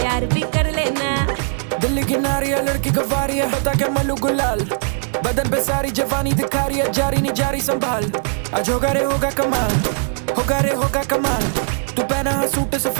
भी कर लेना। दिल्ली की नारिया लड़की गवारी है, बता के मलू गुलाल, बदन पे सारी जवानी दिखा रही है, जारी नहीं जारी संभाल। आज होगा रे होगा कमाल, होगा रे होगा कमाल। तू पहना है सूट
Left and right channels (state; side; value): silent; left; digital silence